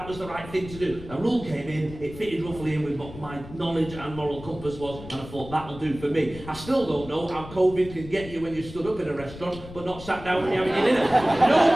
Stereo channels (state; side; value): noise; left; rumble, 14 dB below the sound